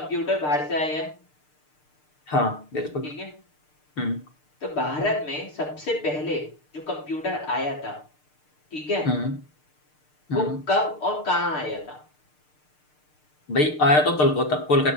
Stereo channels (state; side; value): late; right; 6.6 ms